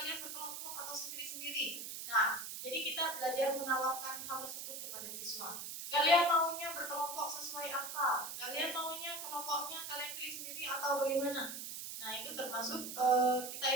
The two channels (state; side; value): noise; right; hiss, 7 dB below the sound